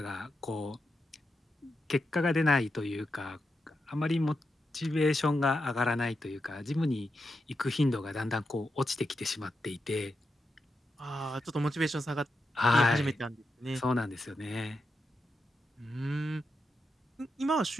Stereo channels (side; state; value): both; normal; correlation 0.87